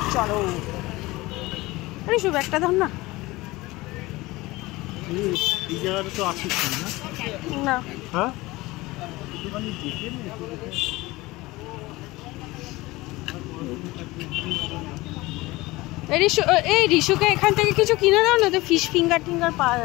চলো। আরে শুভ একটা ধর না। এই জায়গাটা তো আসিস না। হ্যাঁ এই রিশুকে এখান থেকে কিছু কিনে দাও না, তো ফিশ ফিঙ্গার টিঙ্গার পাওয়া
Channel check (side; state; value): right; quieter; 20.5 dB